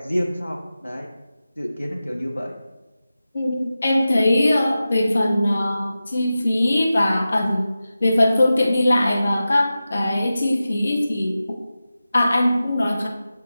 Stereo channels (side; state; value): both; inverted; correlation -0.93